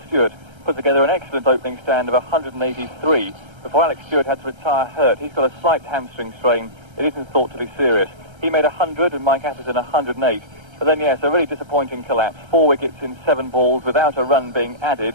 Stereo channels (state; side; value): late; left; 1.3 ms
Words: Stewart put together an excellent opening stand of 183 before Alex Stewart had to retire hurt. He's got a slight hamstring strain. It isn't thought to be serious. He made 100 and Mike Atherton 108. But then, yes, a really disappointing collapse. 4 wickets in 7 balls without a run being added.